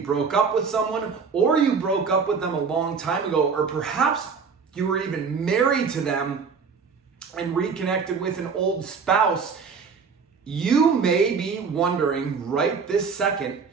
up with someone, or you broke up with them a long time ago, or perhaps you were even married to them and reconnected with an old spouse, you may be wondering right this second,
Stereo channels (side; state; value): left; quieter; 5.6 dB